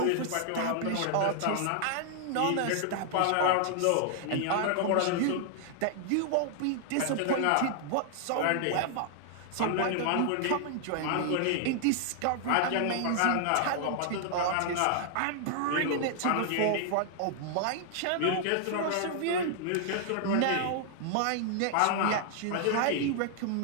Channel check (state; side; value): different; both; correlation 0.00